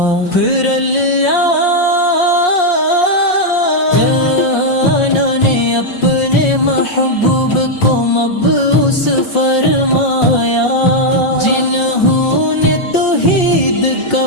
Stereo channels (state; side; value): late; right; 5.6 ms